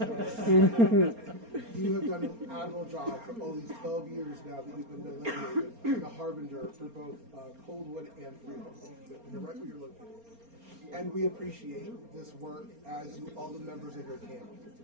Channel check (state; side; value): late; left; 4.3 ms